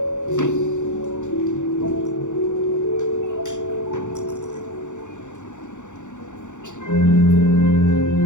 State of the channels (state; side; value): late; right; 0.85 ms